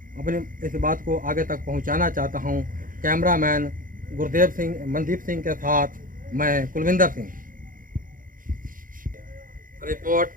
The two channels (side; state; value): left; late; 0.40 ms